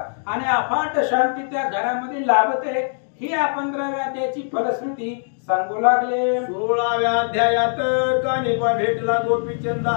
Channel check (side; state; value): right; silent; digital silence